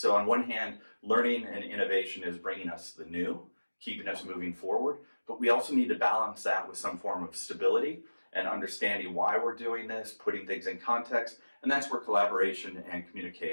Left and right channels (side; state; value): both; inverted; correlation -1.00